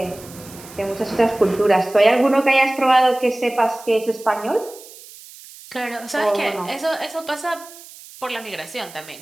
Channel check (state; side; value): noise; right; hiss, 19 dB below the sound